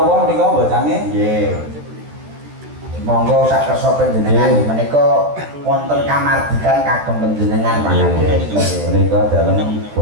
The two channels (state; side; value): late; left; 13 ms